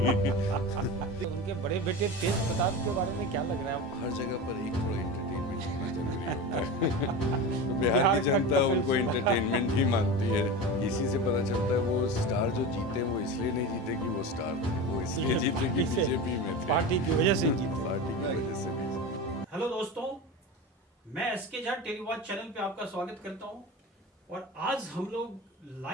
उनके बड़े बेटे तेज प्रताप के बारे में क्या लग रहा है? हर जगह पर एक थोड़ा एंटरटेनमेंट होना जरूरी होता है। तो बिहार की जनता उनको एंटरटेनमेंट ही मानती है। इसी से पता चलता है वो स्टार जो जीते वो इसलिए नहीं जीते कि वो स्टार थे, वो इसलिए जीते कि बीजेपी में थे, पार्टी की वजह से जीते। पार्टी की वजह से भी। हेलो दोस्तों, मैं एसके झा टेलीवॉच चैनल पे आपका स्वागत करता हूं और आज हम लोग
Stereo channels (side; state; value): both; normal; correlation 0.27